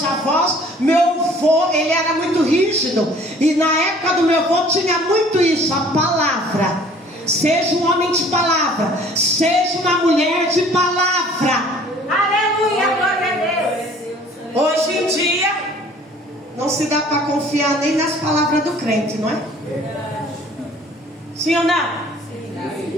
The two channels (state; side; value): normal; both; correlation 0.53